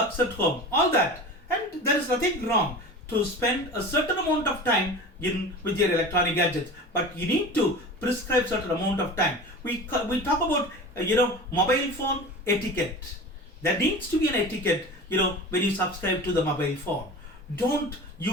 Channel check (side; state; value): both; normal; correlation 0.34